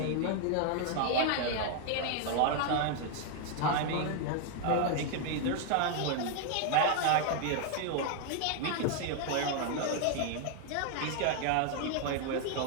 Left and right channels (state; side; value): different; both; correlation 0.00